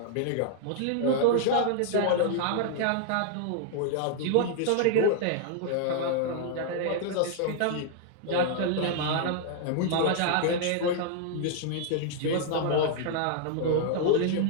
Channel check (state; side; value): different; both; correlation -0.01